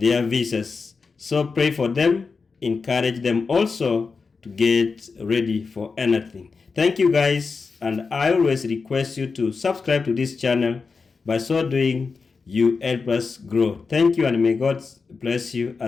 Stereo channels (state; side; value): quieter; right; 4.7 dB